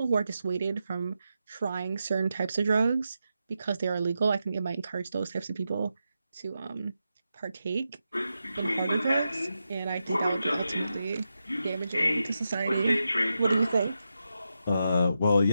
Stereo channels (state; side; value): inverted; both; correlation -0.88